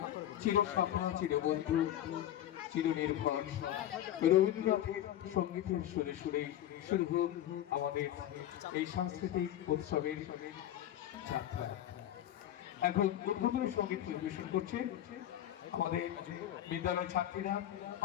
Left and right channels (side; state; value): right; quieter; 12.1 dB